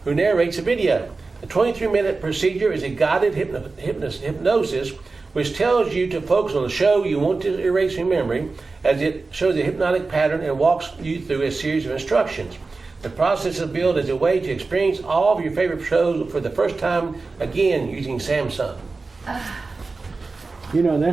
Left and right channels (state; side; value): quieter; left; 3.9 dB